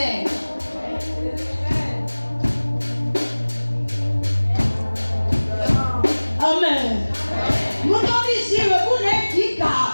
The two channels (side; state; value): both; inverted; correlation -1.00